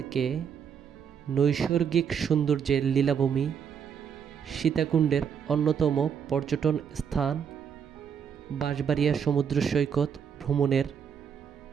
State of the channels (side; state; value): left; quieter; 7.4 dB